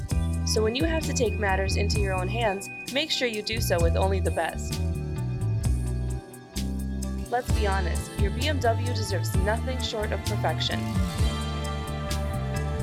So when you have to take matters into your own hands, make sure you do so with only the best. Let's be honest, your BMW deserves nothing short of perfection.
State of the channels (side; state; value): both; identical; correlation 1.00